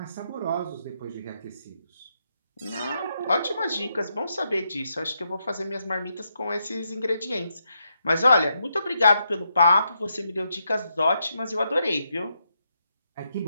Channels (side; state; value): both; inverted; correlation -0.80